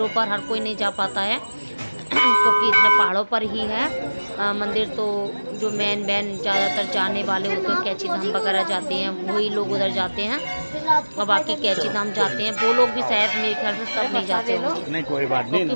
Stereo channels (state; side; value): inverted; both; correlation -1.00